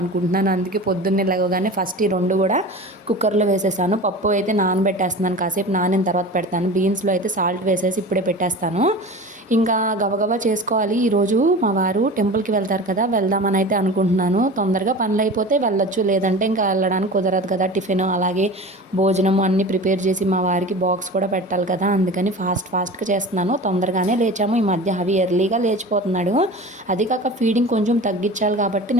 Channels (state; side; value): normal; both; correlation 0.34